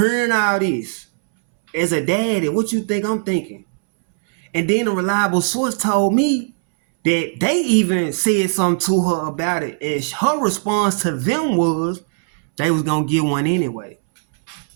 all this. As a daddy, what you think I'm thinking? And then a reliable source told me that they even said something to her about it. And her response to them was they was going to get one anyway.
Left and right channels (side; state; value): left; silent; 67 dB below the other